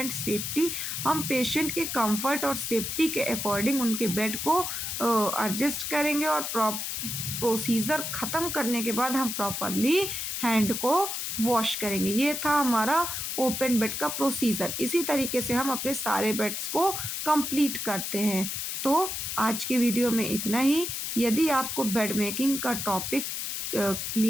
safety. हम पेशेंट के कंफर्ट और सेफ्टी के अकॉर्डिंग उनके बेड को एडजस्ट करेंगे, और प्रोसीजर ख़त्म करने के बाद हम प्रॉपरली हैंड को वॉश करेंगे। ये था हमारा ओपन बेड का प्रोसीजर। इसी तरीके से हम अपने सारे बेड्स को कंप्लीट करते हैं। तो आज की वीडियो में इतना ही। यदि आपको बेड मेकिंग का टॉपिक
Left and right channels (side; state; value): left; noise; hiss, 3 dB below the sound